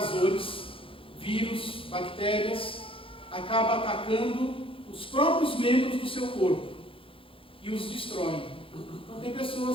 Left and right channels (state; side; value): late; right; 0.26 ms